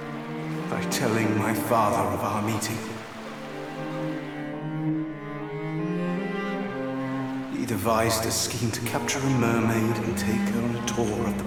by telling my father of our meeting. He devised a scheme to capture a mermaid and take her on a tour of the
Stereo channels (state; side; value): identical; both; correlation 1.00